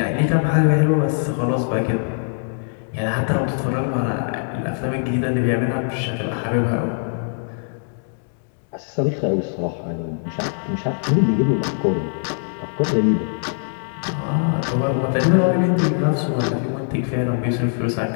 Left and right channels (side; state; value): right; silent; digital silence